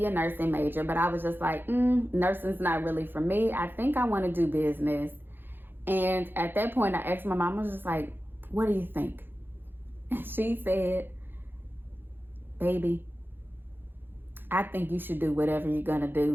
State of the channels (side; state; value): left; late; 0.098 ms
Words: a nursing major, but I was just like, nursing's not really for me. I think I want to do business. And at that point, I asked my mom, I was just like, what do you think? And she said, baby, I think you should do whatever you're going to